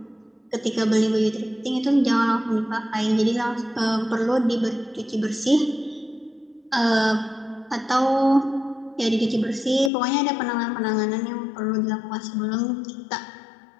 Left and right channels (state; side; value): drops out; right; at 9.9 s